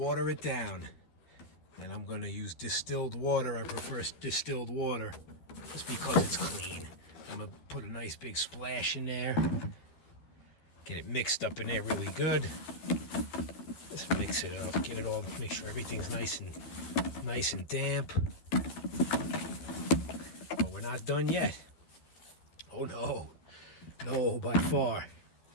it down. And I'm going to use distilled water. I prefer distilled water just because it's clean. I'm going to put a nice big splash in there. Get it mixed up in there really good. Just mix it up. Get it all, make sure everything's nice and damp. But we're not done yet. Oh no. No, by far.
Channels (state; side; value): late; right; 12 ms